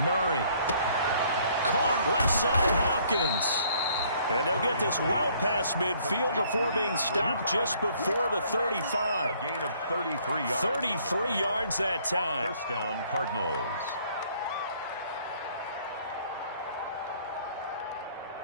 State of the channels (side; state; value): both; inverted; correlation -0.62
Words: Murray. Caught left side, Hopkins. And they'll get this well past midfield before being stopped just before the 35. A gain of 33 yards. 33 yards that time. First down, Cardinals.